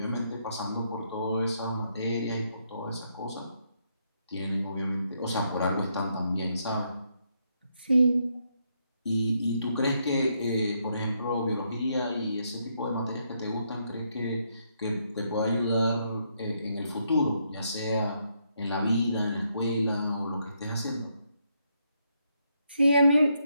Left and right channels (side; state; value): both; inverted; correlation -0.77